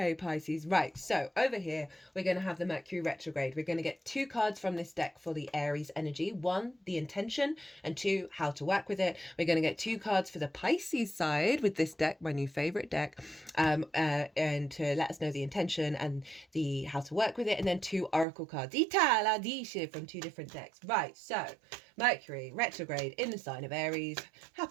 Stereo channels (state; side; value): drops out; left; at 18.2 s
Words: Pisces. Right, so over here, we're going to have the Mercury retrograde. We're going to get 2 cards from this deck for the Aries energy. 1, the intention, and 2, how to work with it. We're going to get 2 cards for the Pisces side with this deck, my new favorite deck, and to let us know the intention and the how to work with it, and then 2 oracle cards from 2 different decks. Right, so Mercury retrograde in the sign of Aries